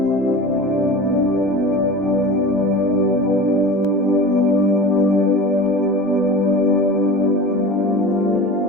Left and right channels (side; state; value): both; normal; correlation 0.34